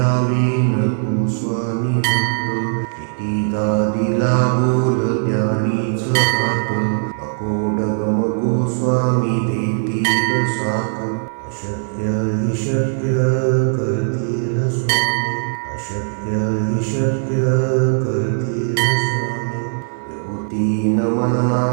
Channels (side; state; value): left; silent; 62 dB below the other